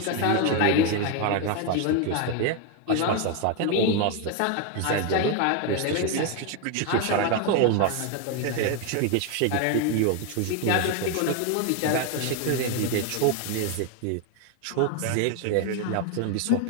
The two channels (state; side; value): different; both; correlation 0.01